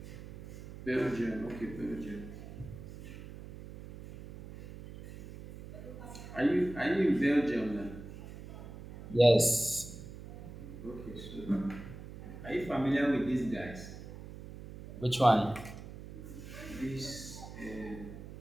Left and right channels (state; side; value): noise; right; hum, 13 dB below the sound